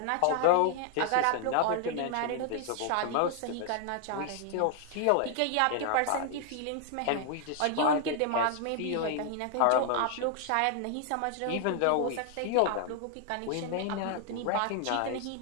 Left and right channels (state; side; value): different; both; correlation 0.00